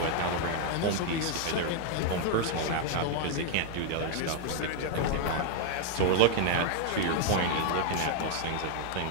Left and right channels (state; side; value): different; both; correlation 0.00